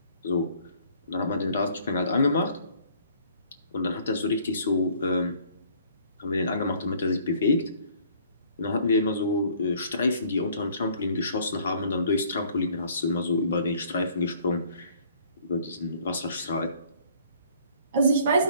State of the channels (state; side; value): inverted; both; correlation -0.58